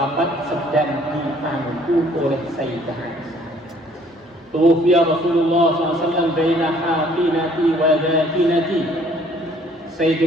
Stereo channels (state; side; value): normal; both; correlation 0.59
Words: sedang dipangku oleh Sayyidah Aisyah. Tufiya Rasulullah SAW baina haqinati wa dhakinati.